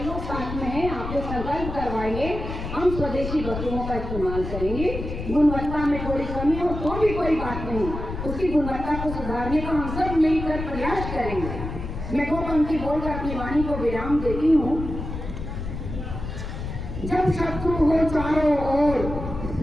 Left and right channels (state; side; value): noise; left; rumble, 6 dB below the sound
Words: लोग साथ में हैं, आपको संकल्प करवाएंगे, हम स्वदेशी वस्तुओं का इस्तेमाल करेंगे। गुणवत्ता में थोड़ी कमी हो तो भी कोई बात नहीं, उसकी गुणवत्ता को सुधारने का हम सब मिलकर प्रयास करेंगे। मैं 2 पंक्ति बोलकर अपनी वाणी को विराम देती हूँ। जब शत्रु हो चारों ओर,